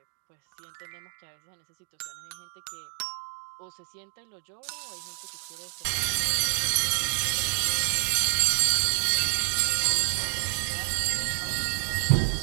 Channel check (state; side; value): silent; left; digital silence